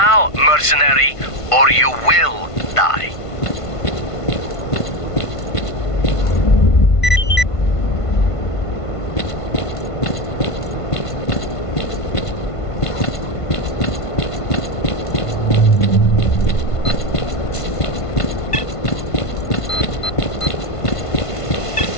mercenary, or you will die.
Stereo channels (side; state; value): right; late; 1.5 ms